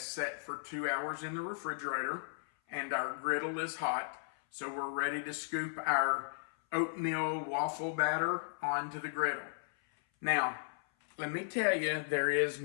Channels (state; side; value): silent; right; 54 dB below the other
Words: set for 2 hours in the refrigerator, and our griddle is hot. So we're ready to scoop our oatmeal waffle batter onto the griddle. Now, let me tell you, there is